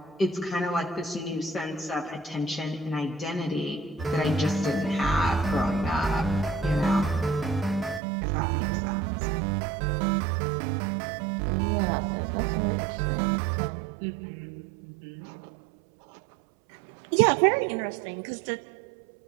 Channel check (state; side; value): drops out; left; at 8.0 s